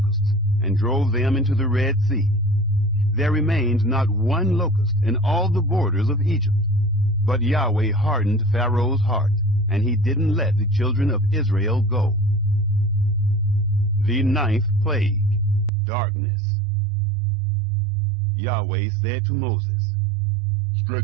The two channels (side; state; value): left; drops out; at 15.7 s